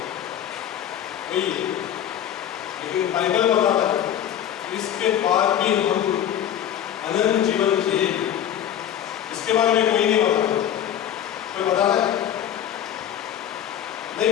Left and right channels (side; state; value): right; quieter; 10.3 dB